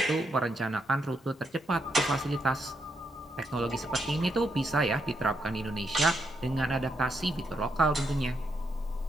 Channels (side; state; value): both; normal; correlation 0.80